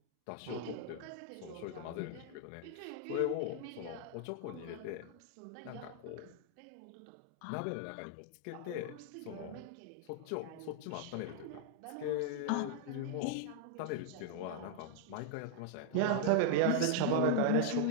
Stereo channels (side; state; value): both; different; correlation -0.01